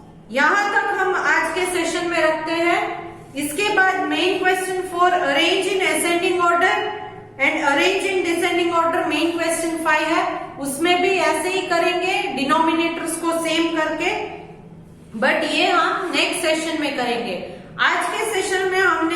यहां तक हम आज के सेशन में रखते हैं। इसके बाद main question for arrange in ascending order and arrange in descending order main question 5 है, उसमें भी ऐसे ही करेंगे डिनोमिनेटर्स को सेम करके, बट ये हम नेक्स्ट सेशन में करेंगे। आज के सेशन में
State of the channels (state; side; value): identical; both; correlation 1.00